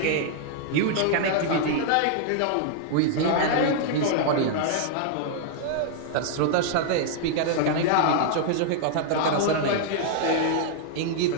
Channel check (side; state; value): both; different; correlation -0.01